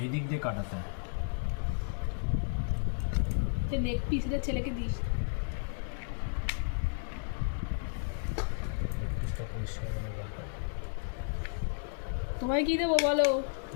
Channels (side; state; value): right; silent; digital silence